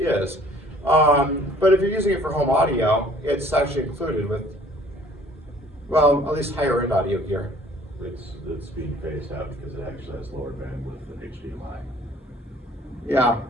But if you're using it for home audio, it's actually included with, well, at least higher end audio gear. It's being phased out because it actually has lower bandwidth than HDMI. Yeah,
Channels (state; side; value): normal; both; correlation 0.54